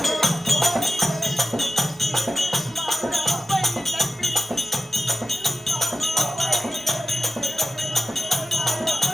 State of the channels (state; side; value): normal; both; correlation 0.94